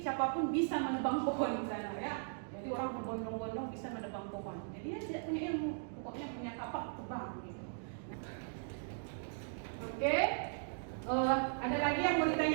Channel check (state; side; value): silent; left; digital silence